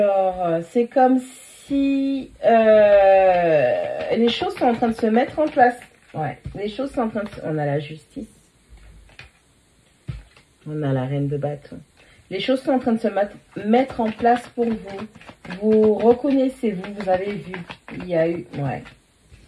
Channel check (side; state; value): both; identical; correlation 1.00